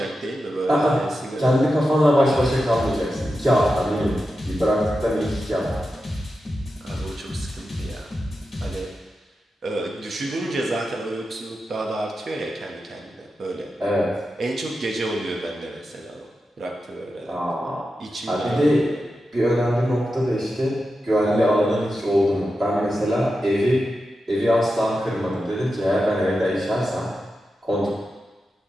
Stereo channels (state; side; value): normal; both; correlation 0.90